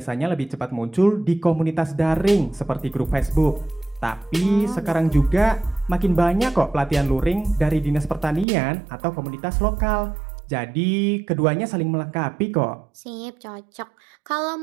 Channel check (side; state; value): left; drops out; at 8.5 s